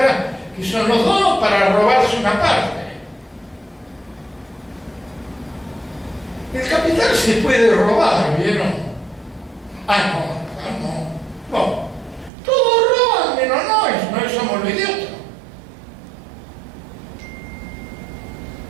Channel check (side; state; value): left; drops out; at 12.3 s